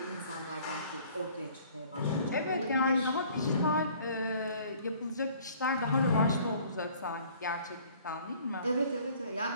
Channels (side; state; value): both; inverted; correlation -0.54